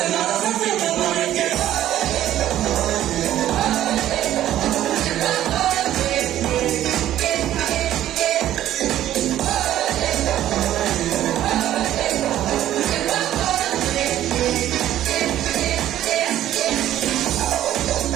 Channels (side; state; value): left; quieter; 12.6 dB